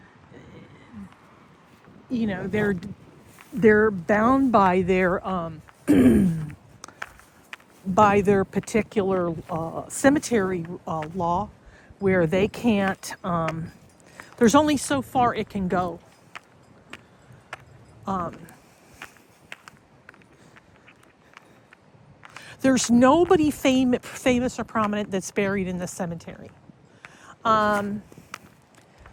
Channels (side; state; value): both; identical; correlation 1.00